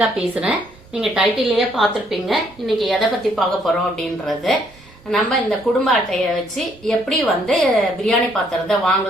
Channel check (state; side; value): normal; both; correlation 0.68